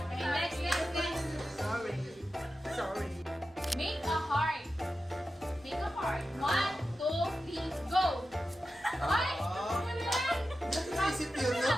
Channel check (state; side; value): normal; both; correlation 0.92